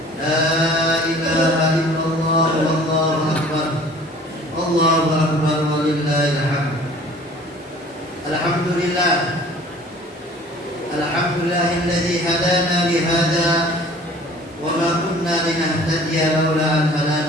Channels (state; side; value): normal; both; correlation 0.49